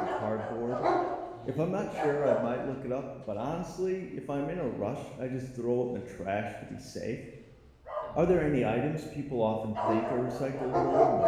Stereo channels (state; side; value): identical; both; correlation 1.00